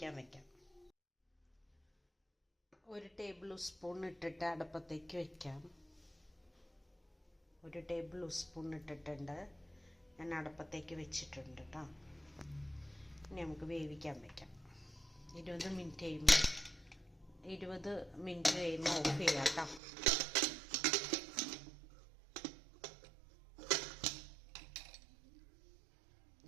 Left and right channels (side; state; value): left; drops out; at 19.8 s